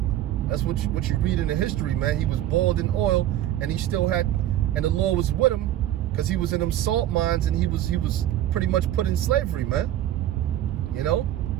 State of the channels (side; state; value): left; quieter; 12.7 dB